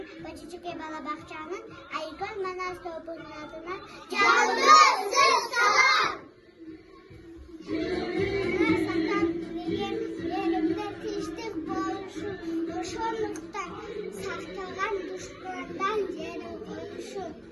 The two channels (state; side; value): identical; both; correlation 1.00